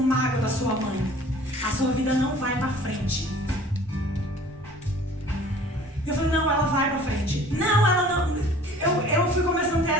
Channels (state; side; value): normal; both; correlation 0.49